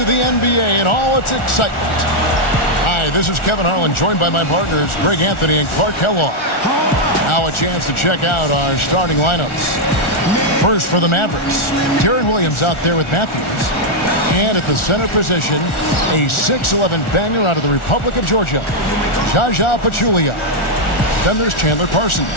the NBA and all its excitement. Hi, this is Kevin Harlan, joined by my partners, Greg Anthony and Clark Kellogg. Now a chance to check out our starting lineups. First for the Mavericks, Deron Williams out there with Matthews. And at the center position, a 6'11 banger out of the Republic of Georgia, Zaza Pachulia. Then there's Chandler Parsons,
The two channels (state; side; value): late; right; 1.4 ms